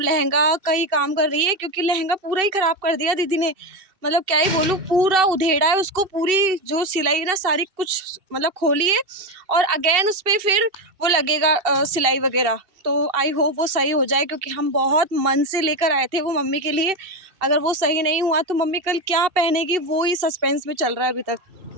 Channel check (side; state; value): left; late; 2.7 ms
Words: का ही काम कर रही है, क्योंकि लहंगा पूरा ही ख़राब कर दिया दीदी ने। मतलब क्या ही बोलूँ, पूरा उधेड़ा है उसको, पूरी जो सिलाई ना सारी कुछ मतलब खोली है, और अगेन उस पर फिर वो लगेगा सिलाई वगैरह। तो आई होप वो सही हो जाए, क्योंकि हम बहुत मन से लेकर आए थे वो मम्मी के लिए। अगर वो सही नहीं हुआ तो मम्मी कल क्या पहनेगी वो ही सस्पेंस में चल रहा है अभी तक।